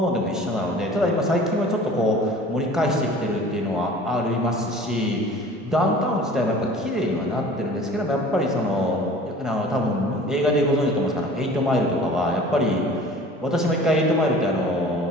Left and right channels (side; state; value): both; normal; correlation 0.45